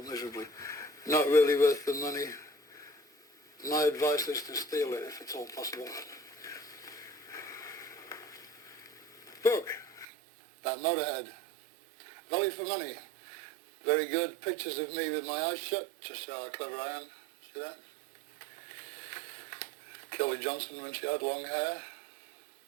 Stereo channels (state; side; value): drops out; left; at 10.1 s